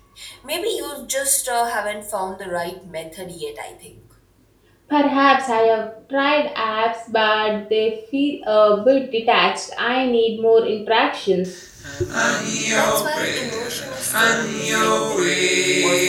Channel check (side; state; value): both; identical; correlation 1.00